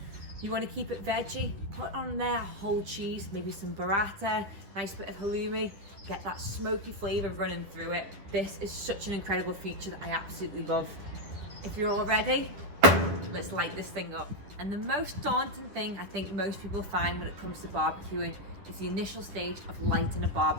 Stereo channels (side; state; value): left; late; 10 ms